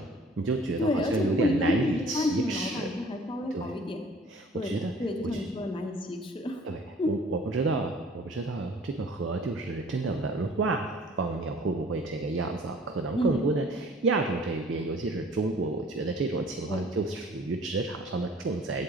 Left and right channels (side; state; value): both; normal; correlation 0.52